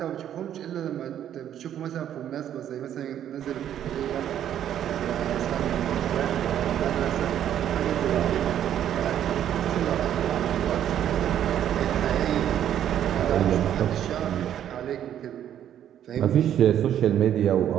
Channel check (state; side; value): quieter; left; 10.5 dB